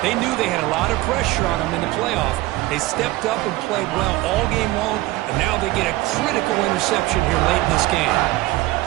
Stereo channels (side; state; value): left; quieter; 18.3 dB